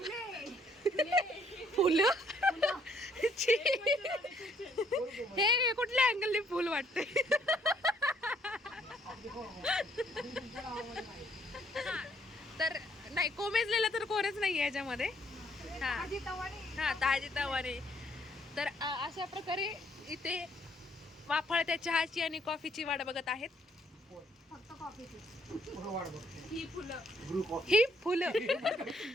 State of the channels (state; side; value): normal; both; correlation 0.66